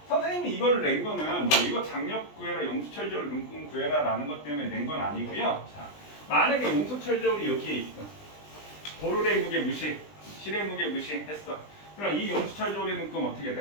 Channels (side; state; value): right; late; 20 ms